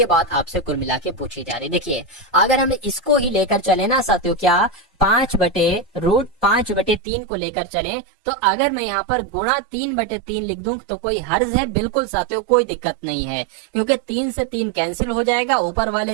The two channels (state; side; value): drops out; left; at 7.0 s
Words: बात आपसे कुल मिला के पूछी जा रही। देखिए अगर हम इसको ही लेकर चले ना साथियों, क्या 5/3 को लेकर चले, तो अगर मैं यहाँ पर गुणा 3/3 लिख दूं तो कोई हर्ज है, बिल्कुल साथियों कोई दिक्कत नहीं है, क्योंकि 3 से 3 कैंसिल हो जाएगा, ऊपर